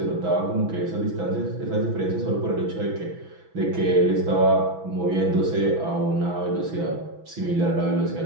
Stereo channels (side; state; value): left; late; 6.1 ms